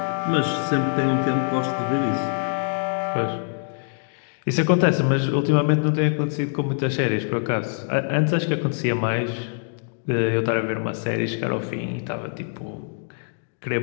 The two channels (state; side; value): silent; right; digital silence